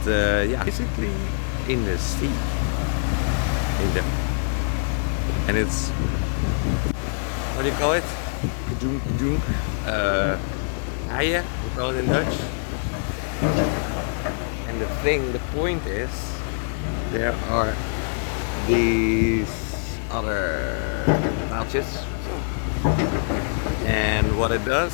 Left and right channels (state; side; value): silent; right; 56 dB below the other